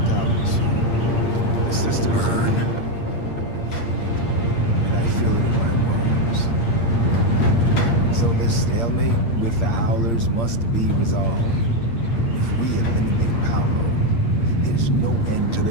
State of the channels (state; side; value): late; right; 8.6 ms